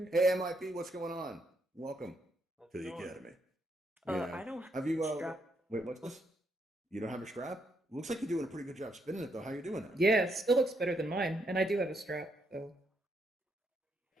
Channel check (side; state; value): both; normal; correlation 0.77